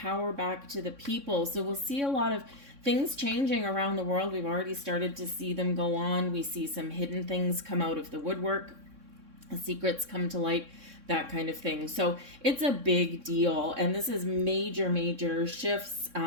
back to the people. So we'll see a lot of things changing around the world. We've already started to see them go on. We see some hidden things come out of the woodwork. Secrets come to light, that kind of thing. So it's a big deal. And this is major shifts,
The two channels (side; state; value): left; late; 3.6 ms